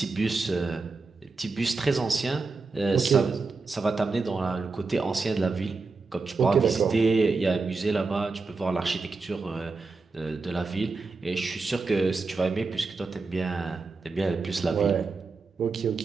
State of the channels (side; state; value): left; quieter; 4.0 dB